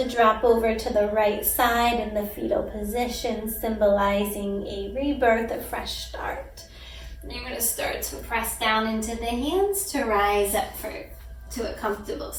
drop over to the right side in the fetal position, symbolizing a rebirth, a fresh start. And you're going to start to press down into the hands to rise up to a comfortable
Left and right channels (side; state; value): both; identical; correlation 1.00